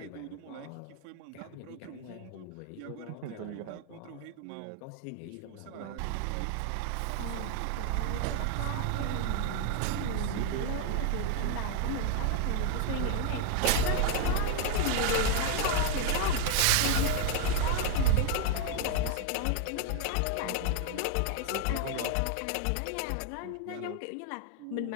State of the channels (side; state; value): both; different; correlation 0.00